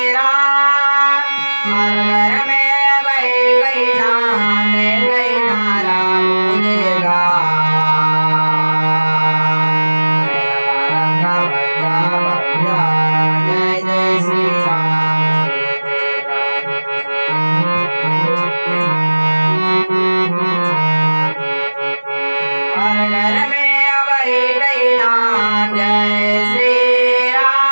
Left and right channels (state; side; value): inverted; both; correlation -1.00